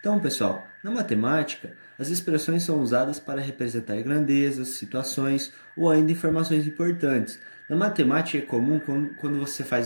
Então, pessoal, na matemática, as expressões são usadas para representar grandezas, situações ou ainda informações importantes. Na matemática é comum quando você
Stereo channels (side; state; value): both; inverted; correlation -1.00